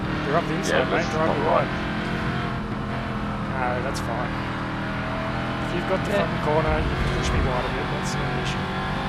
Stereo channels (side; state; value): both; identical; correlation 1.00